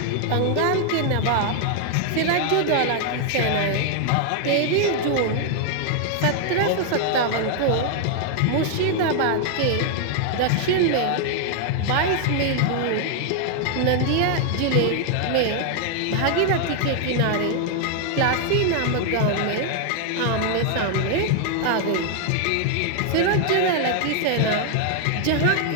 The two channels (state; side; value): different; both; correlation 0.00